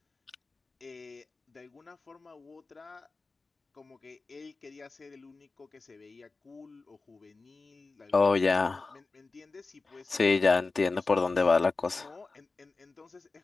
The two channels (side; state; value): right; quieter; 3.8 dB